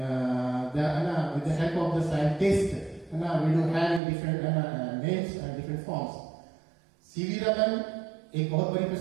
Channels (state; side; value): drops out; left; at 4.0 s